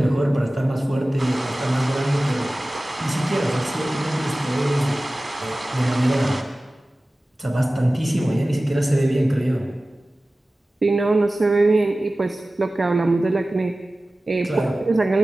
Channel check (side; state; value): both; normal; correlation 0.97